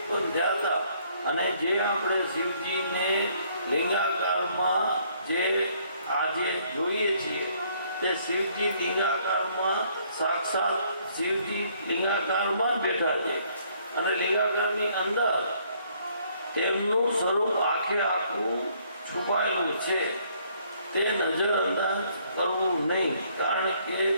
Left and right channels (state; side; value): inverted; both; correlation -0.65